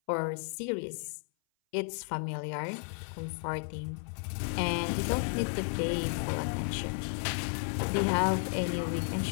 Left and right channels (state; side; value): silent; right; 56 dB below the other